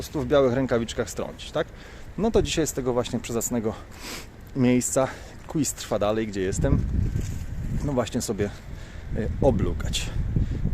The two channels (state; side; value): identical; both; correlation 1.00